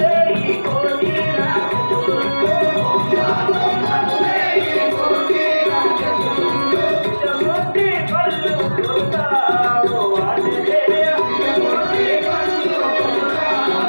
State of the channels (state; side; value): inverted; both; correlation -1.00